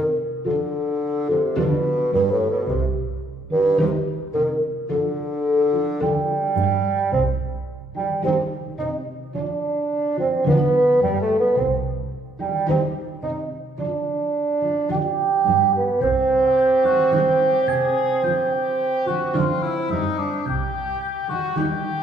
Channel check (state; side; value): normal; both; correlation 0.73